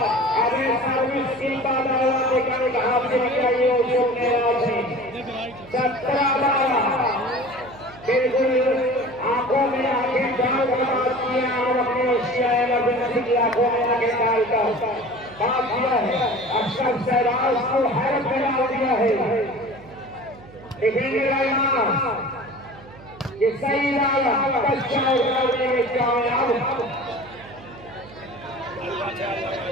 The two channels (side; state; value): right; noise; hum, 20 dB below the sound